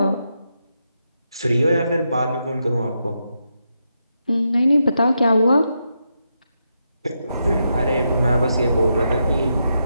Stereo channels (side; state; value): both; inverted; correlation -0.84